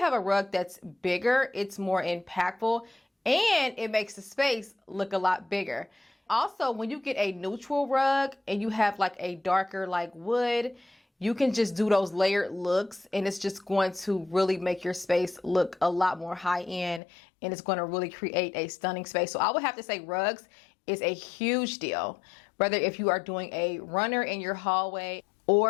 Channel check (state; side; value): drops out; right; at 17.0 s